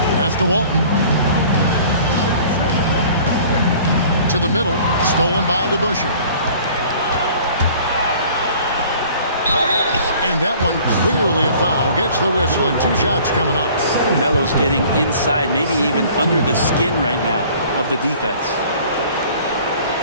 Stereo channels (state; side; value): inverted; both; correlation -0.50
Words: Pass to Walton. To the middle, stolen by DeBusschere. And that one clearly a foul. Gets the whistle, and 2 shots coming up. Melo's getting inside, maybe even under the skin right now of the defense.